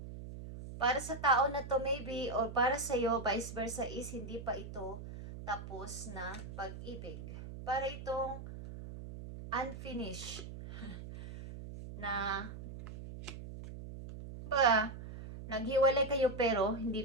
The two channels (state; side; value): noise; right; hum, 11 dB below the sound